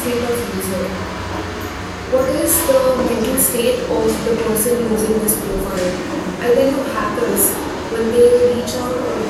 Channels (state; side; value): identical; both; correlation 1.00